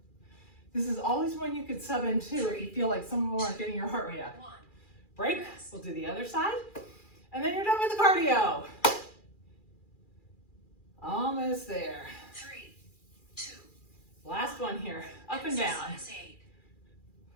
This is always one you could sub into if you feel like some of them aren't getting your heart rate up. 1. Break. Rest. We'll do the other side. And then you're done with the cardio. Almost there. 3, 2. Last one here. Up and down. Exercise 8.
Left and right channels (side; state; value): right; late; 2.4 ms